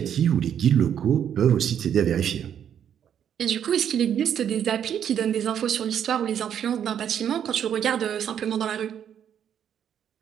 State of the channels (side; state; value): left; quieter; 9.1 dB